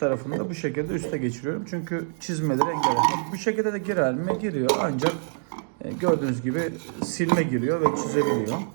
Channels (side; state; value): left; silent; digital silence